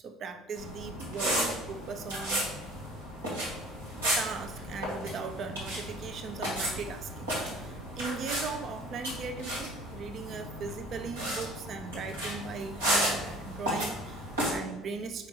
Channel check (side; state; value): both; normal; correlation 0.47